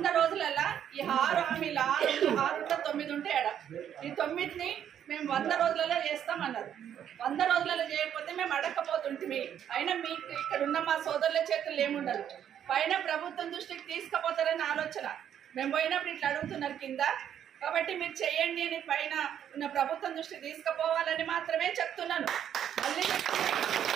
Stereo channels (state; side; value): quieter; left; 9.6 dB